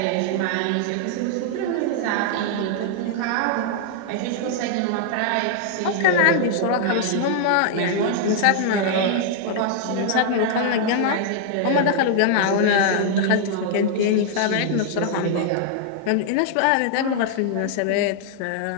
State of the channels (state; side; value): different; both; correlation -0.01